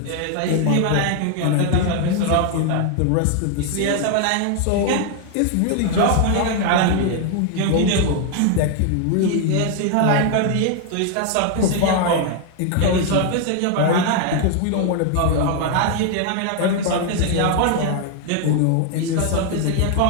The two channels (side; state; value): both; different; correlation 0.00